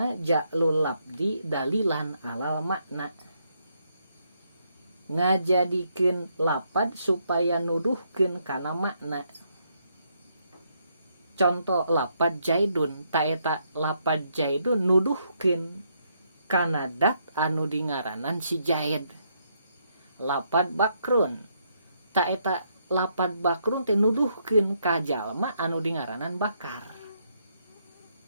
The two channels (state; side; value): inverted; both; correlation -0.75